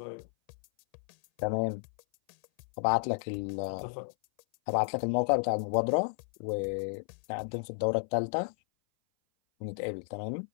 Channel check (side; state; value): right; silent; 56 dB below the other